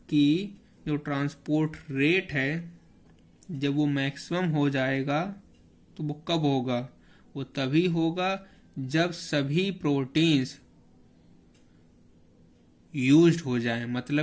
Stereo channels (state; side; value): identical; both; correlation 1.00